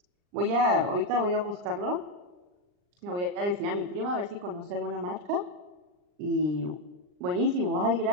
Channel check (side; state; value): left; late; 39 ms